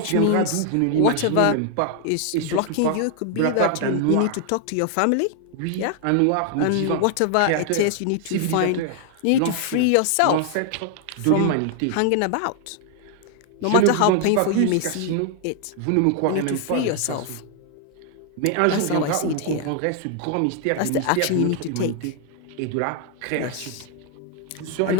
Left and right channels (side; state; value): both; different; correlation 0.00